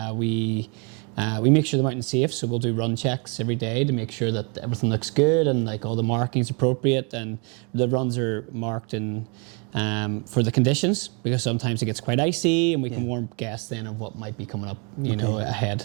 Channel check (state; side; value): quieter; left; 34.9 dB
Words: We make sure the mountain's safe, so we'll do run checks every day to make sure that everything looks good and like all the markings appropriate, and the runs are marked in for the conditions, because sometimes it gets quite icy, and we can warn guests then of what might be coming up, you know,